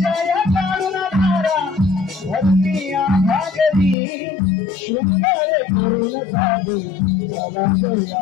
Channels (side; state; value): right; drops out; at 4.0 s